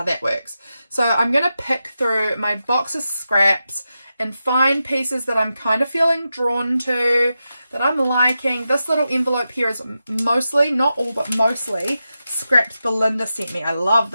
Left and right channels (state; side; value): inverted; both; correlation -0.90